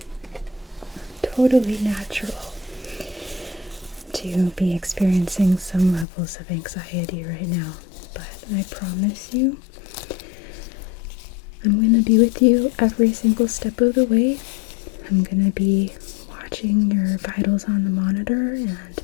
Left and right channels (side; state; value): right; drops out; at 6.1 s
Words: Totally natural to be experiencing some levels of anxiety right now, but I promise you, I'm going to be with you every single step of the way. I'm going to be watching your vitals on the monitor and